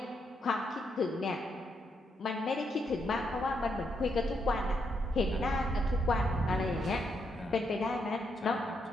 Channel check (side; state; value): both; normal; correlation 0.79